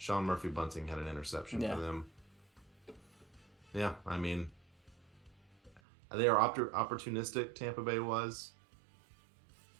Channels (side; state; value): left; drops out; at 5.8 s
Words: Murphy-Bunting had an interception for them. Yeah, I mean, they are opportunistic, Tampa Bay was.